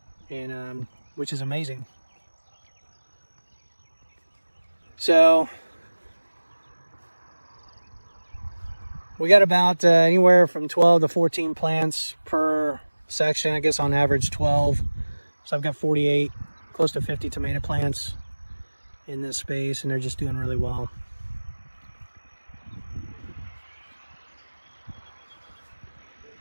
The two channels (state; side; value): inverted; both; correlation -1.00